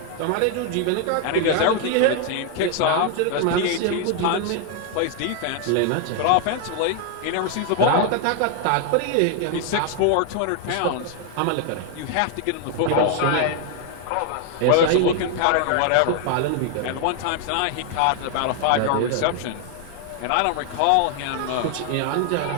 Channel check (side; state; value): both; different; correlation 0.00